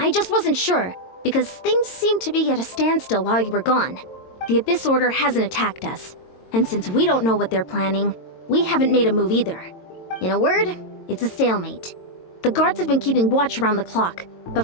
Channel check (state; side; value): late; right; 22 ms